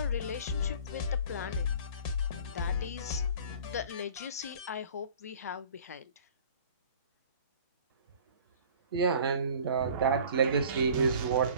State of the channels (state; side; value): inverted; both; correlation -0.47